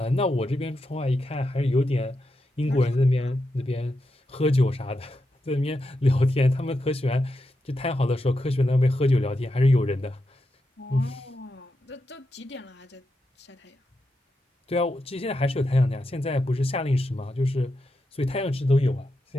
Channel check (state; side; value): normal; both; correlation 0.86